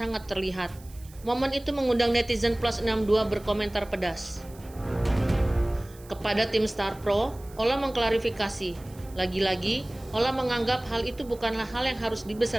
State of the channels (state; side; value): noise; right; hiss, 23 dB below the sound